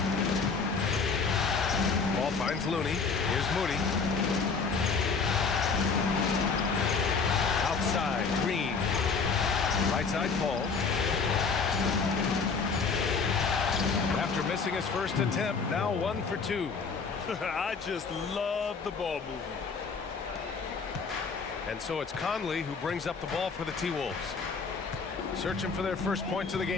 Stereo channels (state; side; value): quieter; right; 5.0 dB